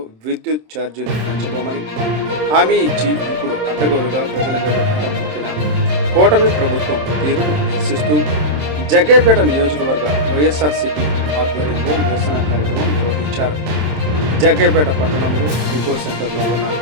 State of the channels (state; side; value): late; left; 27 ms